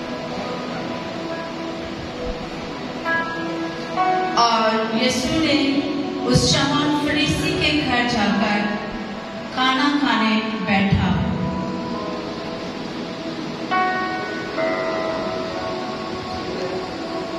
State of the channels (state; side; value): identical; both; correlation 1.00